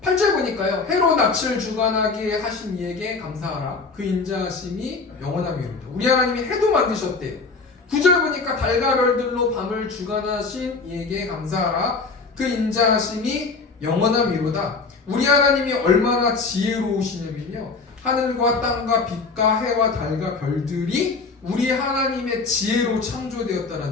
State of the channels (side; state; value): right; quieter; 4.2 dB